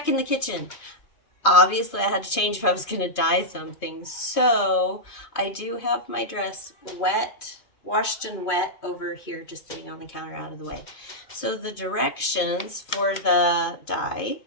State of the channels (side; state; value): right; late; 2.5 ms